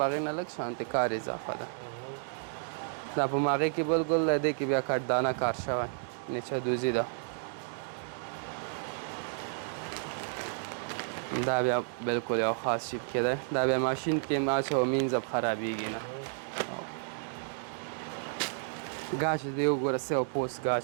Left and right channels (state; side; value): silent; left; digital silence